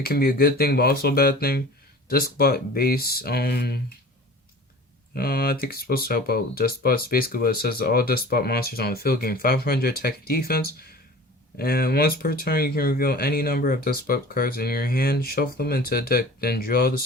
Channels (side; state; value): both; normal; correlation 0.41